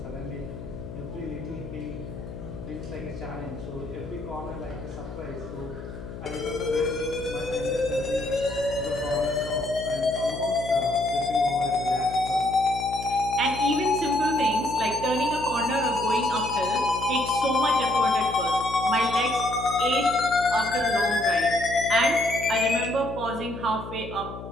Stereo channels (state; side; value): noise; left; hum, 11 dB below the sound